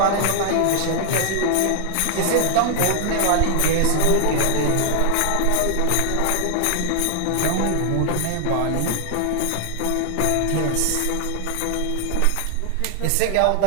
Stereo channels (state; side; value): different; both; correlation 0.00